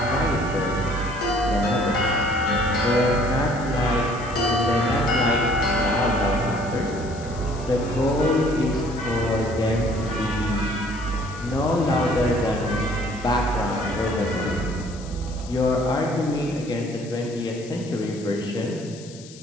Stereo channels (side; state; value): left; noise; hiss, 19 dB below the sound